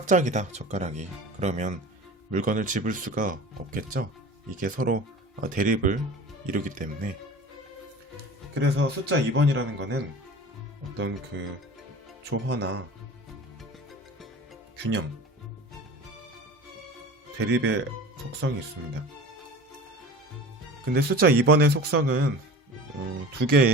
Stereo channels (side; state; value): both; normal; correlation 0.37